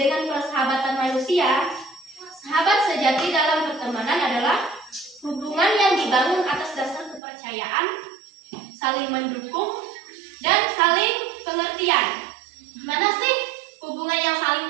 persahabatan manusia, sahabat sejati dalam pertemanan adalah hubungan yang dibangun atas dasar kepercayaan, saling mendukung, dan saling pengertian. Mana sih hubungan yang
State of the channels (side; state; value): left; drops out; at 7.2 s